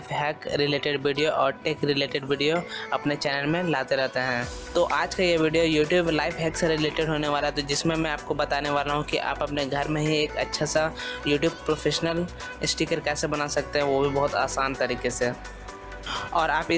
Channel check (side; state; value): both; identical; correlation 1.00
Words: hack related video और टेक रिलेटेड वीडियो अपने चैनल में लाते रहते हैं। तो आज का ये वीडियो यूट्यूब लाइफ हैक से रिलेटेड होने वाला है, तो जिसमें मैं आपको बताने वाला हूँ कि आप अपने घर में ही एक अच्छा सा यूट्यूब प्रोफेशनल स्टिकर कैसे बना सकते हैं, वो भी बहुत आसान तरीके से। और आप